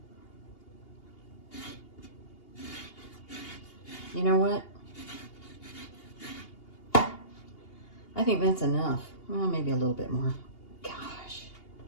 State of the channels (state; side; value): late; right; 2.8 ms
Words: You know what? I think that's enough. Well, maybe a little bit more. Gosh.